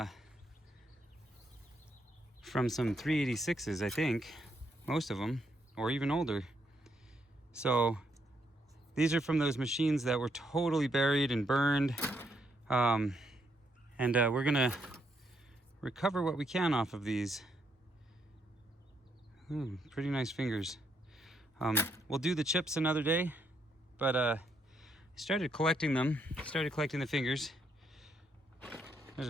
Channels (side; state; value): both; normal; correlation 0.75